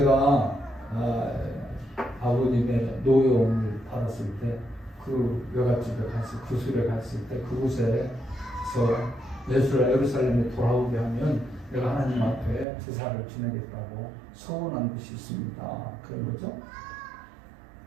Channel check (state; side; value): drops out; left; at 12.7 s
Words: 아버님의 노여움을 받았을 때 그 외갓집에 갔을 구술에 갔을 때 그곳에서 예루살렘에 돌아오게 하면 내가 하나님 앞에 제사를 지내겠다고 서원한 것이 있습니다. 그런 거죠.